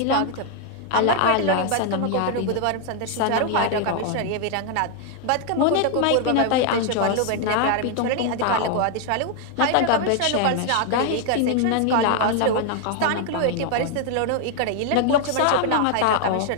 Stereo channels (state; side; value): different; both; correlation 0.00